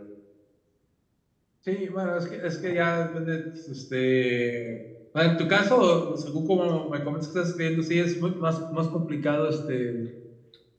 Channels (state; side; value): identical; both; correlation 1.00